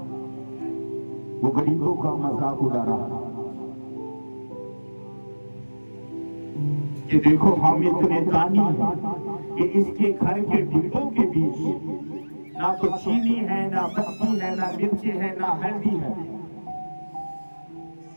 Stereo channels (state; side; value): inverted; both; correlation -1.00